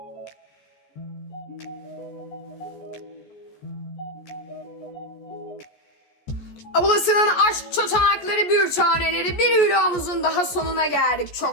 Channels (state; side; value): late; right; 14 ms